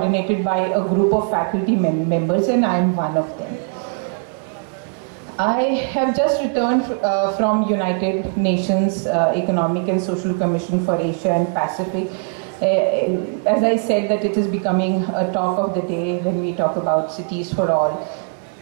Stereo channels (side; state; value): left; silent; 56 dB below the other